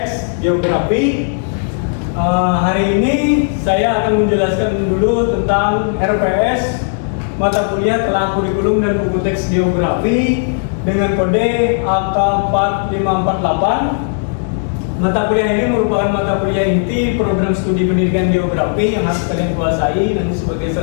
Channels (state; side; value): silent; right; digital silence